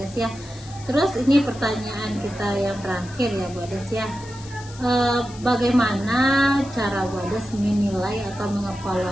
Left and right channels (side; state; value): left; noise; hiss, 19 dB below the sound